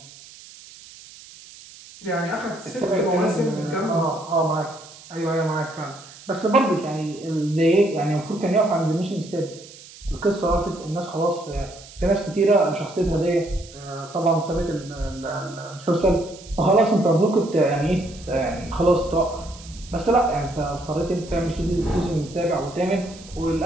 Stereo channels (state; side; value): noise; right; hiss, 19 dB below the sound